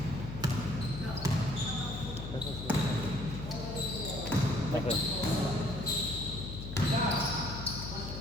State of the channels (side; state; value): left; noise; hum, 8 dB below the sound